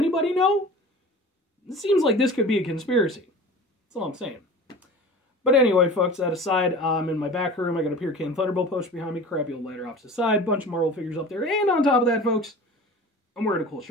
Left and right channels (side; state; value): both; normal; correlation 0.38